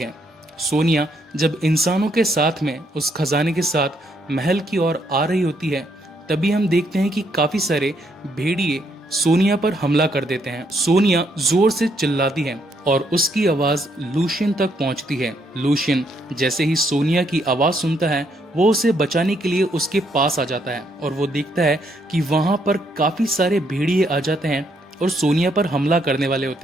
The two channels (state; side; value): normal; both; correlation 0.73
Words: सोनिया जब इंसानों के साथ में उस खजाने के साथ महल की ओर आ रही होती है, तभी हम देखते हैं कि काफी सारे भेड़िए सोनिया पर हमला कर देते हैं। सोनिया जोर से चिल्लाती है और उसकी आवाज लूशियन तक पहुंचती है। लूशियन जैसे ही सोनिया की आवाज सुनता है, वो उसे बचाने के लिए उसके पास आ जाता है और वो देखता है कि वहां पर काफी सारे भेड़िए आ जाते हैं और सोनिया पर हमला करने वाले